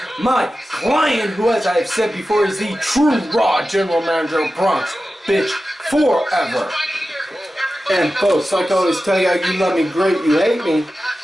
my client, who, as I have said before, is the true Raw General Manager of Bronx Bitch Forever. And folks, like I always tell you, you love me great, you hate me.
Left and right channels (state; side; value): normal; both; correlation 0.93